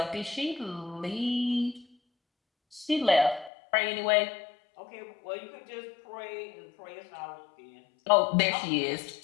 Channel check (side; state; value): right; drops out; at 3.5 s